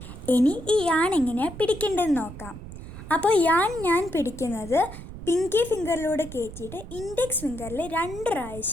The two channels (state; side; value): noise; right; rumble, 13 dB below the sound